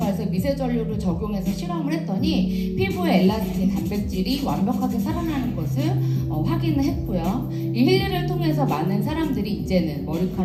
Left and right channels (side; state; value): both; identical; correlation 1.00